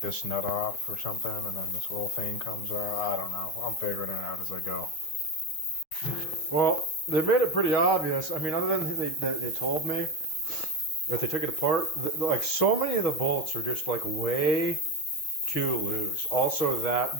nut off or something and then this whole thing comes out. I don't know. I'm figuring it out as I go. Well, they made it pretty obvious. I mean, other than they told me that they took it apart, like so many of the bolts are just like way too loose. Also, that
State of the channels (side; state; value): right; late; 6.4 ms